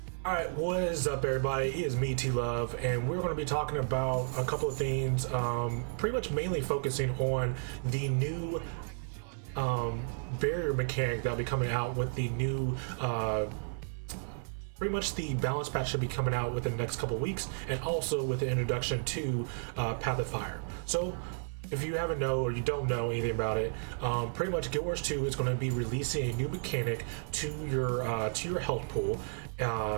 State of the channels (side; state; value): left; silent; 56 dB below the other